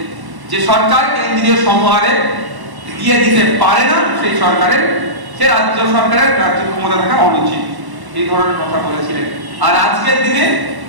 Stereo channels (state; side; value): late; left; 1.1 ms